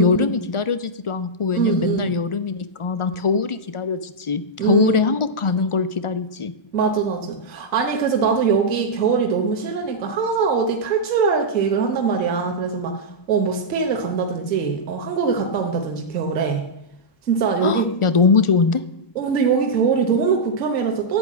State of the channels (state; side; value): late; right; 1.4 ms